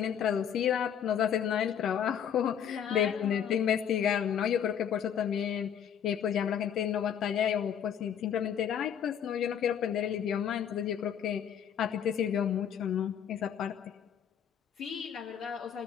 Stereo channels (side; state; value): right; quieter; 8.6 dB